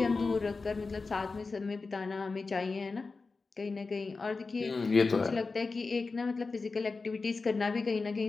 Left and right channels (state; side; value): quieter; right; 4.1 dB